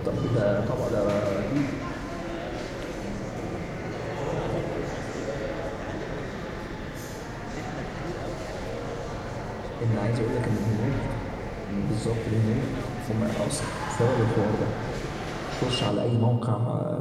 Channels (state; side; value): identical; both; correlation 1.00